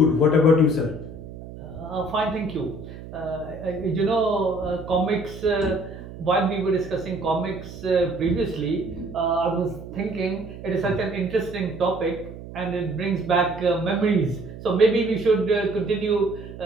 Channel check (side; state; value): right; noise; hum, 13 dB below the sound